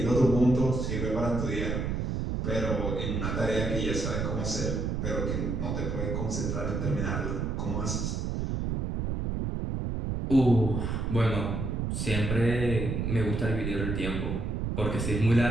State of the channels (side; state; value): right; noise; rumble, 1 dB below the sound